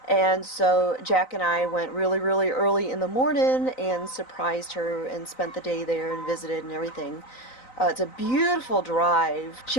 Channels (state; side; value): late; right; 3.9 ms